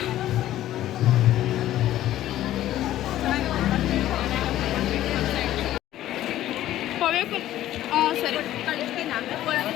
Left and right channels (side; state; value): right; quieter; 13.5 dB